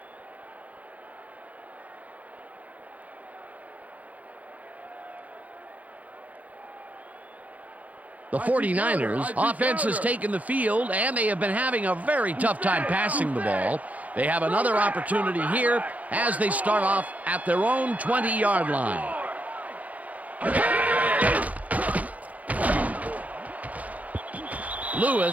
The 49ers offense has taken the field, and they have been having a very tough time passing the ball. They have another opportunity here as they start off at their own 20-yard line.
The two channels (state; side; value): late; left; 0.070 ms